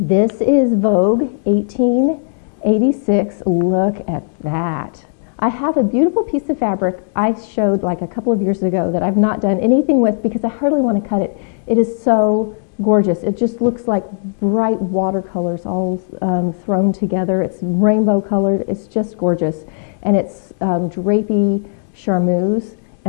is Vogue 1886. Look at that. I have a beautiful piece of fabric I showed like a couple of years ago that I've not done anything with because I hardly want to cut it. It is so gorgeous. It just looks like bright watercolors all thrown together. It's rainbow colored. It's just gorgeous. And it's drapey charmeuse,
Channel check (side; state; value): right; silent; digital silence